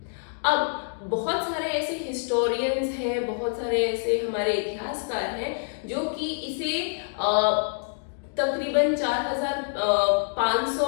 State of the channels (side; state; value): right; silent; digital silence